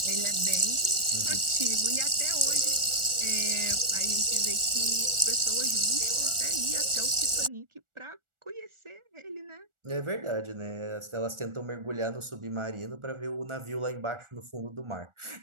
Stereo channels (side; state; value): left; late; 1.4 ms